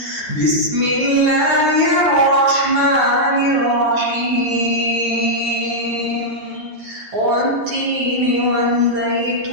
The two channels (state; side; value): late; left; 9.3 ms